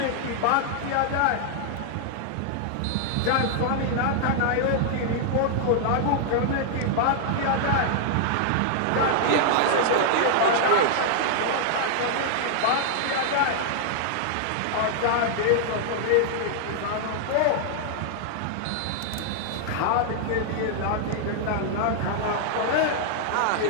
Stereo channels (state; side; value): different; both; correlation -0.01